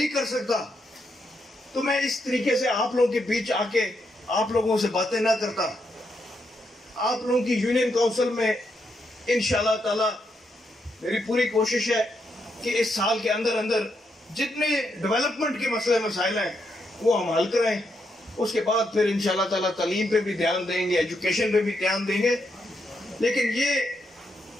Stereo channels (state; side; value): normal; both; correlation 0.80